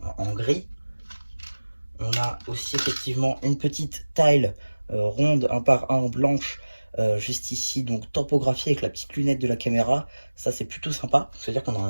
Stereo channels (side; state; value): both; inverted; correlation -1.00